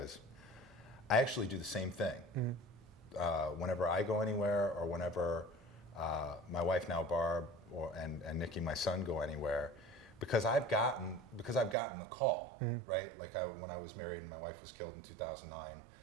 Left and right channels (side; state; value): left; drops out; at 11.8 s